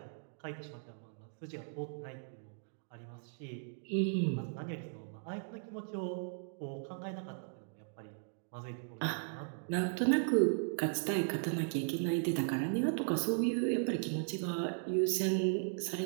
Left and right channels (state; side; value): silent; left; digital silence